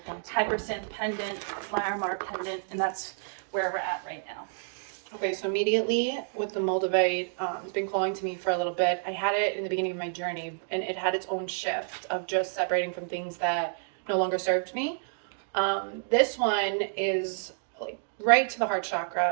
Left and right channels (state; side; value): silent; left; digital silence